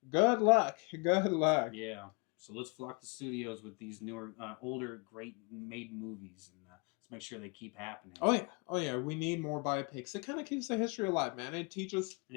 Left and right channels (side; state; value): right; quieter; 32.4 dB